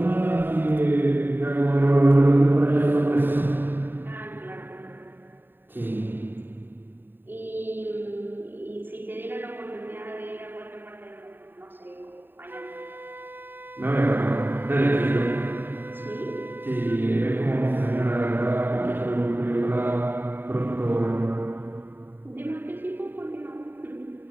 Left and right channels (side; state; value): left; late; 0.095 ms